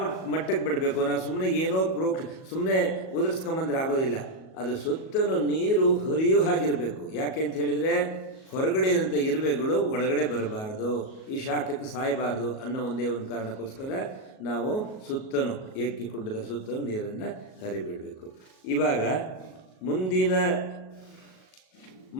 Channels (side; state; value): right; late; 37 ms